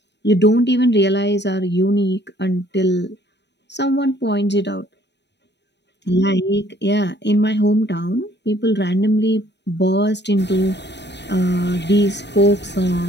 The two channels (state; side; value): late; right; 0.50 ms